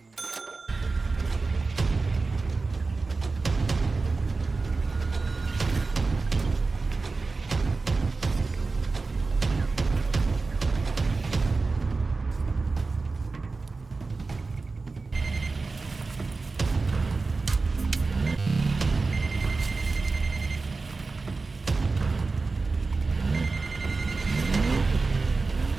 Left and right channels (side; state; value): left; quieter; 3.9 dB